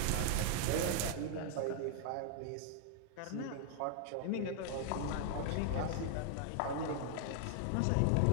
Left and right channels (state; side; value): different; both; correlation 0.00